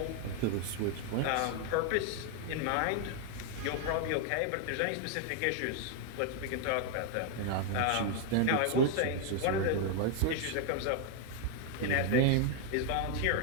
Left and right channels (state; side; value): different; both; correlation 0.00